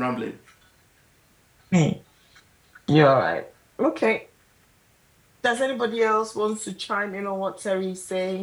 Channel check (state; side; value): identical; both; correlation 1.00